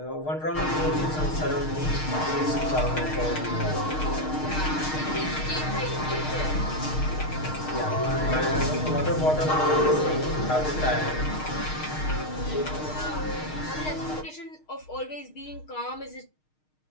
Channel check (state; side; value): late; right; 6.5 ms